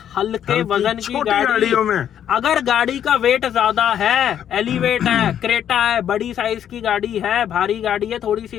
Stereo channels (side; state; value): right; quieter; 9.8 dB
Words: हल्के वजन की छोटी गाड़ी। गाड़ियों में अगर गाड़ी का वेट ज्यादा है, एलिवेट है, क्रेटा है, बड़ी साइज की गाड़ी है, भारी गाड़ी है थोड़ी